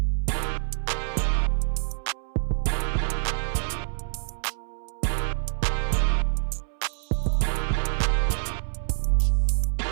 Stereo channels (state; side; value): silent; left; 61 dB below the other